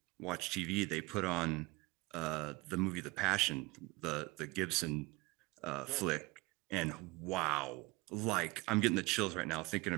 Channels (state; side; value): quieter; left; 23.1 dB